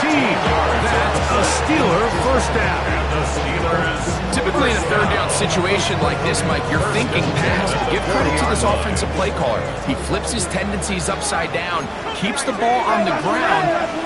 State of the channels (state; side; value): identical; both; correlation 1.00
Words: 13. That's a Steeler first down. Typically in a third down situation like this, Mike, you're thinking pass. But give credit to this offensive play caller. He flips his tendencies upside down, keeps the ball on the ground.